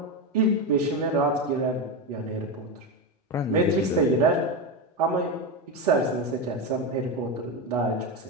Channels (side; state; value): both; normal; correlation 0.14